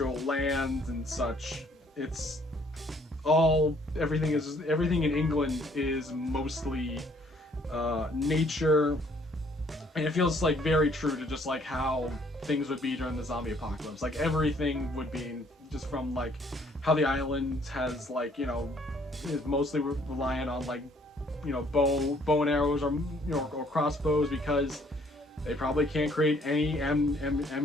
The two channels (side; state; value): both; normal; correlation 0.63